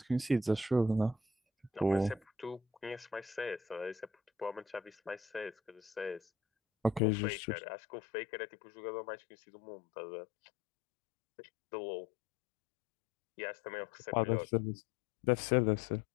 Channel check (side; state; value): right; drops out; at 7.0 s